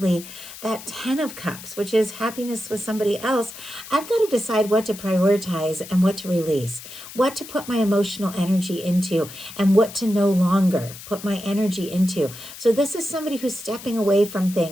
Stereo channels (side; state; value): left; noise; hiss, 14 dB below the sound